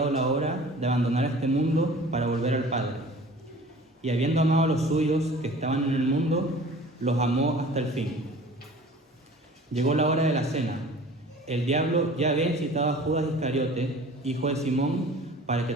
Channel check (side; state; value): both; normal; correlation 0.44